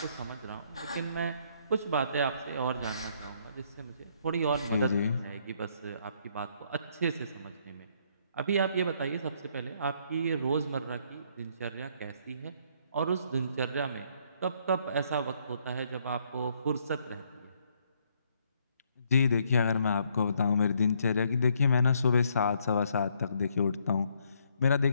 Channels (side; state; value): both; inverted; correlation -0.69